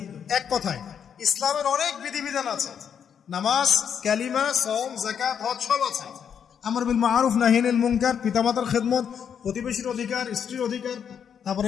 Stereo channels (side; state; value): right; quieter; 7.9 dB